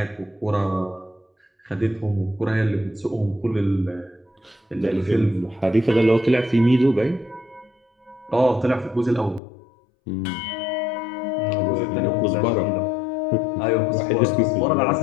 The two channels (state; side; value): drops out; right; at 9.4 s